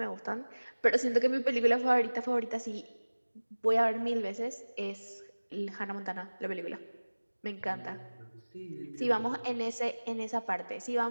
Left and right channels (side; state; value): both; inverted; correlation -1.00